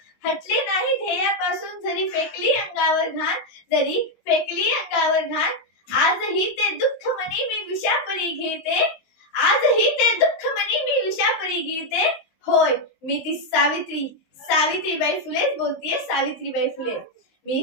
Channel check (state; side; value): late; right; 19 ms